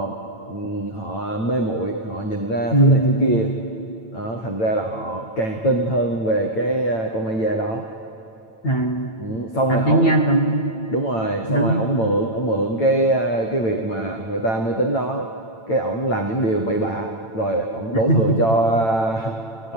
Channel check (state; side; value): late; right; 8.9 ms